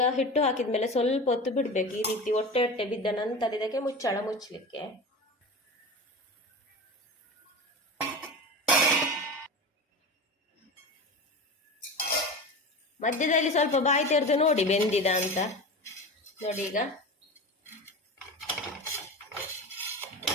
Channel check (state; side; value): normal; both; correlation 0.29